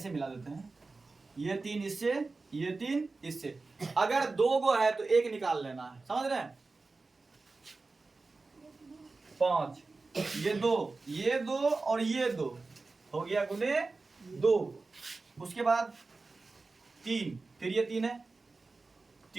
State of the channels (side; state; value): left; quieter; 3.7 dB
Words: मिला देते हैं, ये 3 इससे, ये 3 इससे। अगर 2 गो है तो एक निकाल लेना है, समझ रहे हैं? 5 ये 2, ये 2 और ये 2 हो गया गुने 2। उसके बाद 3, फिर ये 3 है,